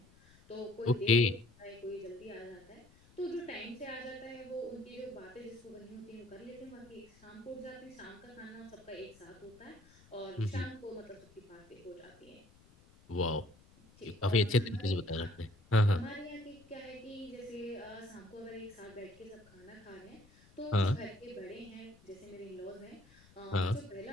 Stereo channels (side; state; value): left; noise; rumble, 26 dB below the sound